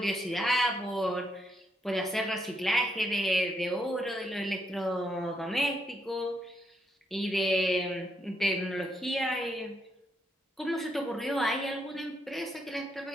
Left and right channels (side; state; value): both; normal; correlation 0.78